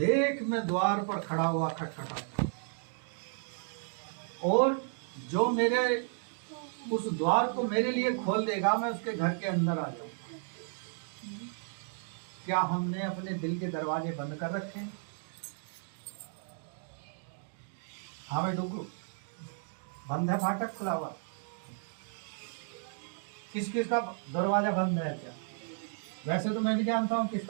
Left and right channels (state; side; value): silent; left; 55 dB below the other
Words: मैं द्वार पर खड़ा हुआ खटखटाता हूँ, और जो मेरे उस द्वार को मेरे लिए खोल देगा मैं उसके घर के अंदर आ जाऊंगा। क्या हमने अपने दिल के दरवाजे बंद कर रखे हैं? हमें डुगू बंद है, फाटक खुला हुआ? किस किस का दरवाजा बंद है? क्या वैसे तो मैं भी जानता हूँ